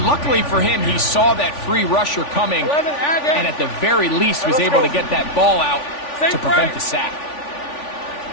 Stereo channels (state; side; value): late; right; 3.4 ms